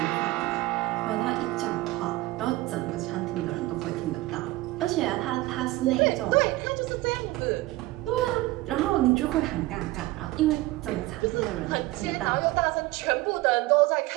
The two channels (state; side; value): quieter; left; 18.8 dB